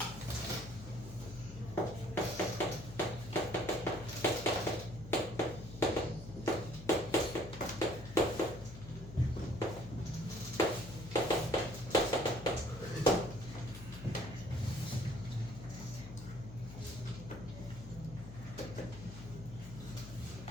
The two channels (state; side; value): noise; left; hum, 12 dB below the sound